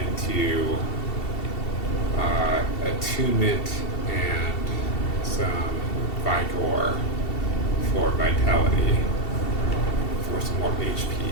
attunement and some Vigor for vitality for some more HP.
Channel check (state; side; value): late; right; 2.7 ms